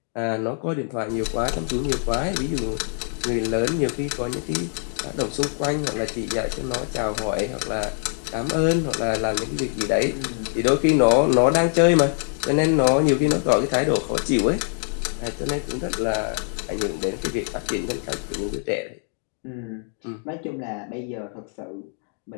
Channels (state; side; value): silent; right; 56 dB below the other